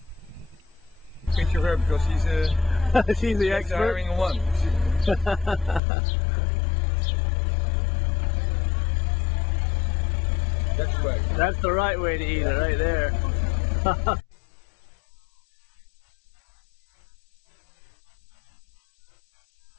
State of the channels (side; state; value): right; drops out; at 5.8 s